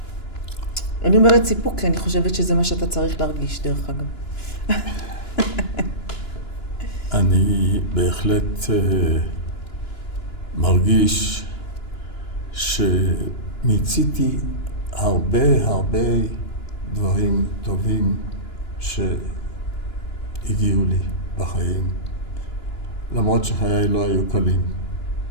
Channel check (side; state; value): right; late; 2.9 ms